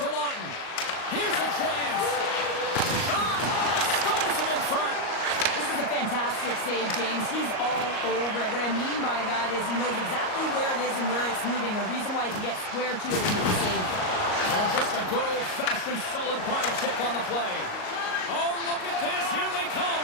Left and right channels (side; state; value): right; late; 38 ms